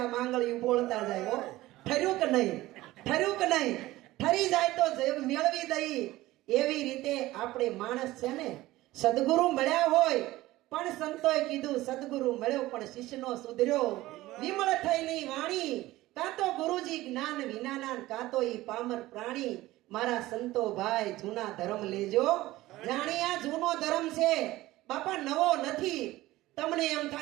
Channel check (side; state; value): left; quieter; 17.3 dB